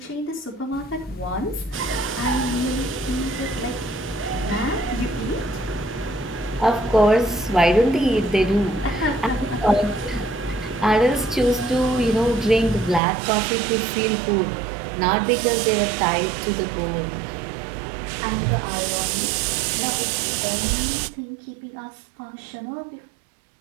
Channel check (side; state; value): left; drops out; at 13.0 s